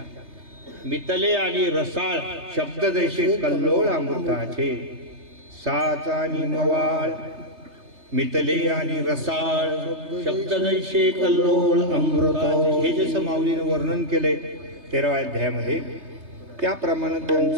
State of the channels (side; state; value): left; late; 3.3 ms